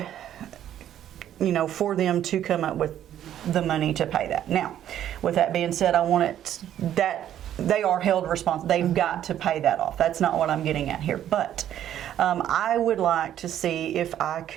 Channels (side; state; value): left; quieter; 11.1 dB